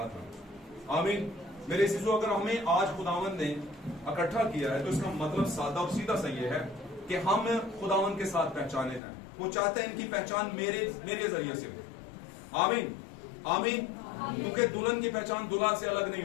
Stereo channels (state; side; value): drops out; right; at 9.0 s